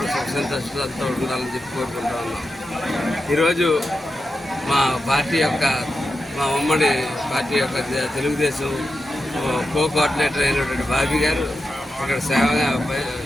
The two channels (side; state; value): both; normal; correlation 0.89